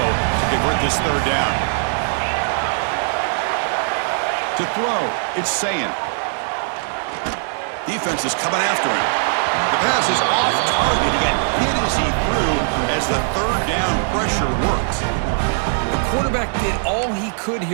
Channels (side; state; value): left; silent; 66 dB below the other